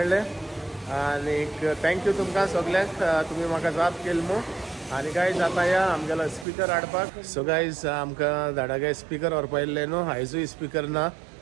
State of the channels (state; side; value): drops out; left; at 6.5 s